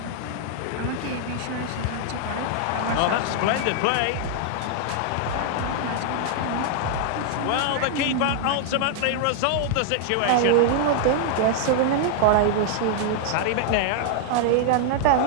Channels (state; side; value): different; both; correlation -0.01